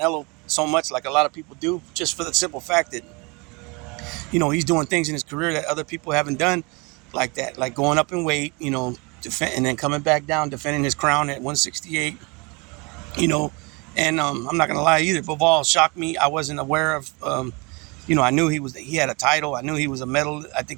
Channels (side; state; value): left; quieter; 28.5 dB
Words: so much like a lot of people do, just for the simple fact that, he's doing things in his career that other people haven't done like that, like going up in weight, and then coming back down, defending his crown at 168, you know. And I'm not gonna lie either. Bivol shocked me. I wasn't aware of. I knew he had a title. I knew he was a medal. I think